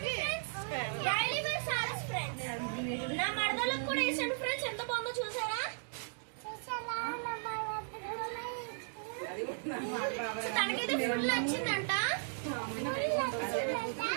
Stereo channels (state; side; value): silent; left; digital silence